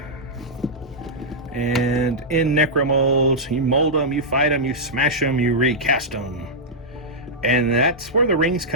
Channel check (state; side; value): normal; both; correlation -0.09